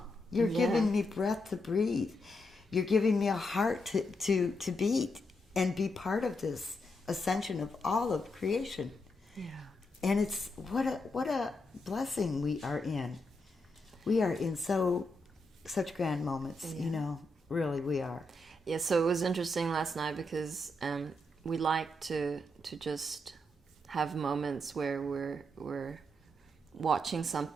You're giving me breath to breathe. You're giving me a heart to beat and be part of this ascension of all of creation. Yeah. And it's what a blessing we are in. We are in such grand moments, really we are. Yeah, so it was interesting last night because we like to just have moments where we're watching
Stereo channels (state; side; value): normal; both; correlation 0.82